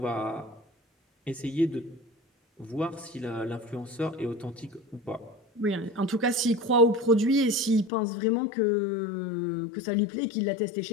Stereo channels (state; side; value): drops out; right; at 7.9 s